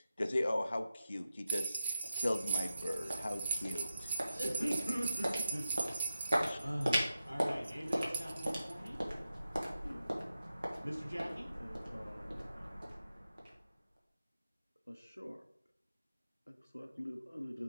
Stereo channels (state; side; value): inverted; both; correlation -0.91